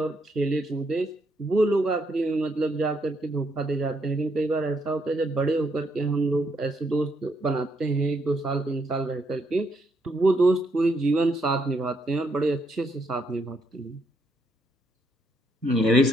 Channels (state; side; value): normal; both; correlation 0.75